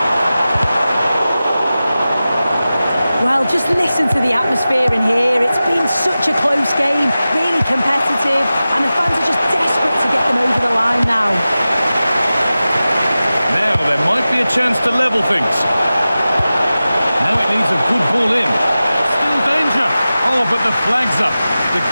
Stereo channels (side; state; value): both; inverted; correlation -0.95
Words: Well, just listen to the atmosphere in here. It's been such a close game, really competitive, and the fans are just desperate to get them over the line now. Now there might be a chance to level things. Now it needs a good ball in. Still danger. Oh, but the flag's up. The